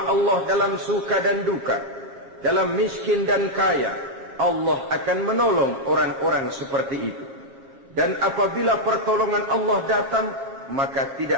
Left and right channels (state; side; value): late; left; 7.5 ms